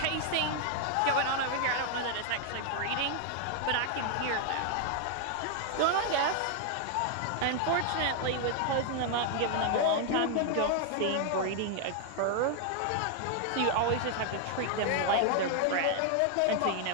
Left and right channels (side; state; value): both; different; correlation 0.00